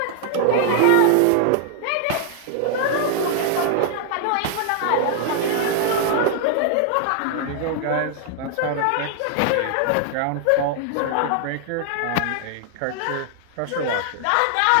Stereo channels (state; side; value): different; both; correlation -0.01